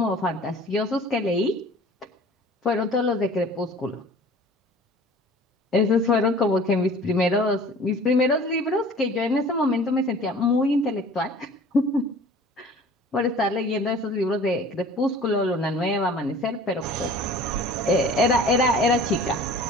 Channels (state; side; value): normal; both; correlation 0.46